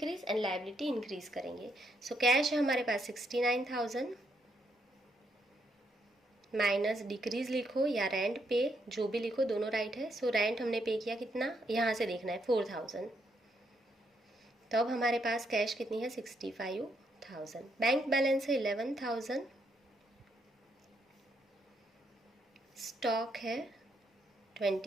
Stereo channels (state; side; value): normal; both; correlation 0.76